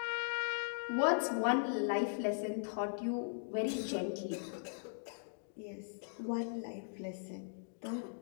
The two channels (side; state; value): right; silent; digital silence